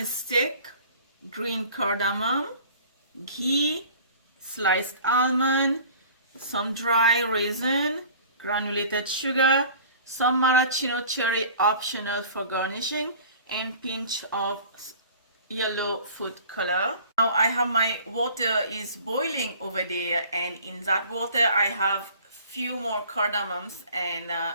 stick, green cardamom, ghee, sliced almond, some dry raisin, granulated sugar, some maraschino cherry optional for garnishing, and pinch of yellow food color. Now I have my water is boiling over there, and in that water I have few more cardamoms and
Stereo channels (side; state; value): both; inverted; correlation -0.46